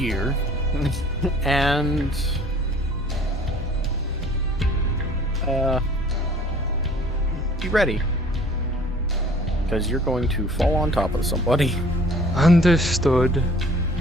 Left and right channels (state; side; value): normal; both; correlation 0.52